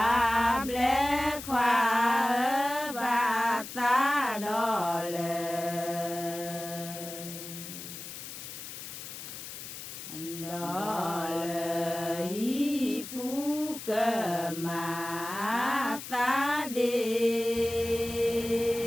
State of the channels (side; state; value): left; noise; hiss, 10 dB below the sound